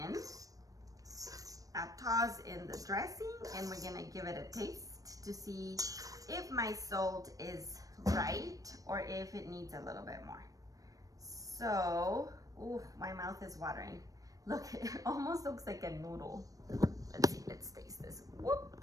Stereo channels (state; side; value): late; left; 0.17 ms